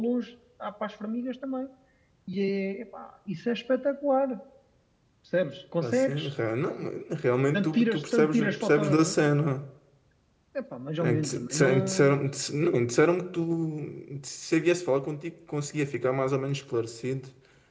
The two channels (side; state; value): both; identical; correlation 1.00